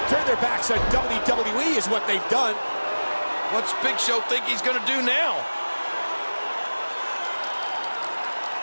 turned their backs on WWE is what they've done. What's Big Show think he's going to do now?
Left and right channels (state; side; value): inverted; both; correlation -1.00